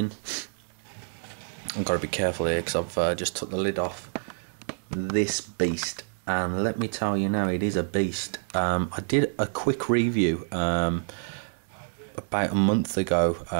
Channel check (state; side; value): silent; left; digital silence